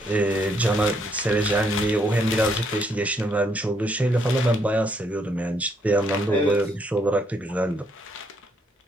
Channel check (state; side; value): normal; both; correlation 0.72